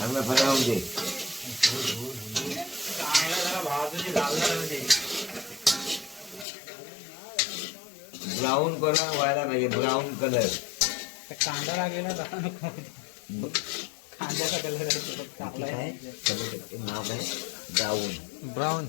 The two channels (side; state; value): right; drops out; at 6.5 s